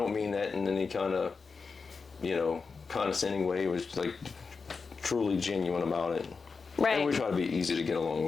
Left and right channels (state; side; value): quieter; right; 4.8 dB